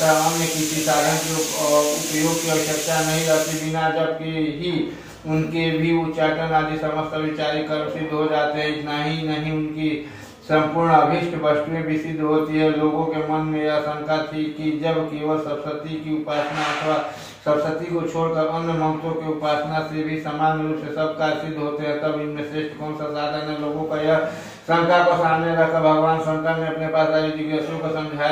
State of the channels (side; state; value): both; identical; correlation 1.00